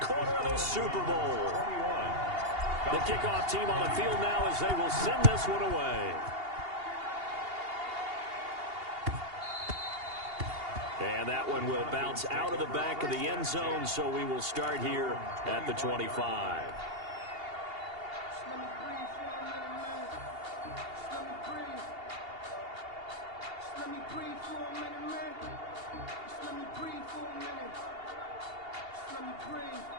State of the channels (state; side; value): late; left; 2.8 ms